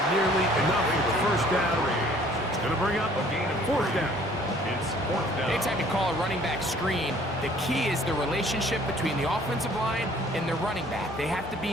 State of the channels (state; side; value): normal; both; correlation 0.56